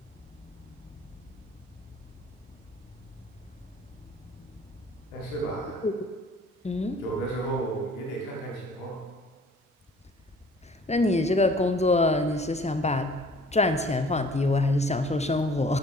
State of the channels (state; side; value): normal; both; correlation 0.52